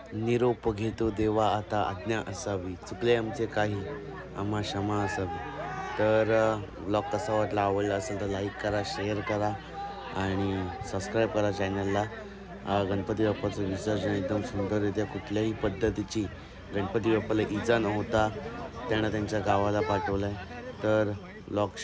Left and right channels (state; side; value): identical; both; correlation 1.00